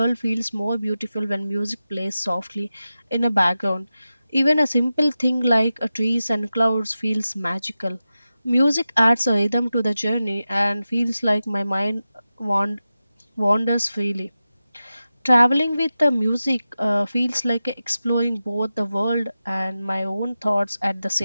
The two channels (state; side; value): inverted; both; correlation -0.93